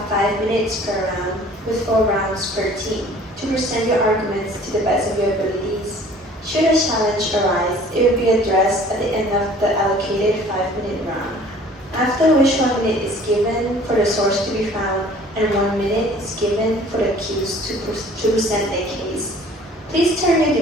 5 minutes per round, with 4 rounds per team, to present your arguments to the best of your abilities. Should a challenge arise, it will be addressed at the end of the allocated 5-minute round, after which 1 minute is given for the source to be found and 1 minute is given for the accused to present their case. Please turn your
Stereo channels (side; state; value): both; normal; correlation 0.51